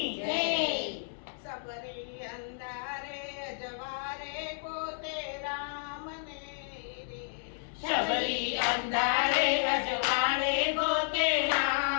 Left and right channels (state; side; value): silent; right; digital silence